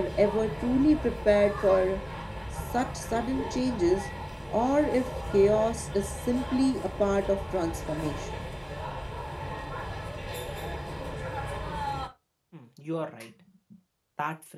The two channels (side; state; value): both; identical; correlation 1.00